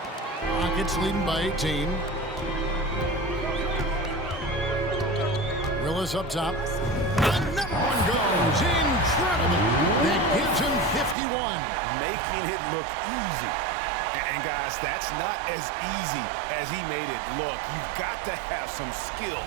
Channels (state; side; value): drops out; left; at 11.2 s